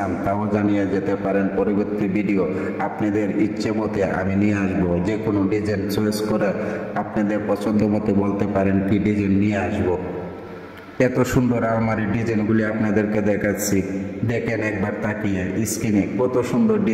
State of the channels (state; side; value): identical; both; correlation 1.00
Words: তাও জানিয়ে যেতে পারেন। পরবর্তী ভিডিও আপনাদের ইচ্ছে মতে আমি নিয়ে আসবো। যে কোনো ডিজাইন চয়েস করে আপনাদের পছন্দ মতো বলতে পারেন কি ডিজাইন নিয়ে আসবো। এত সুন্দর আলমারির ডিজাইনগুলি আপনাদেরকে দেখাচ্ছি, দেখেন একবার তাকিয়ে স্ক্রিনে কত সুন্দর